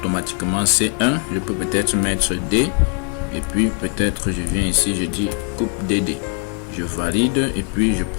C1. Je peux peut-être mettre D. Et puis peut-être je viens ici, je dis coupe DD. Je valide et puis je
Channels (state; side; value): quieter; right; 35.8 dB